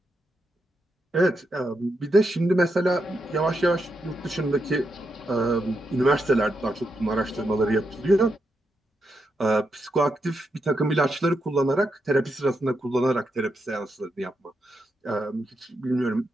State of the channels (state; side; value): normal; both; correlation 0.83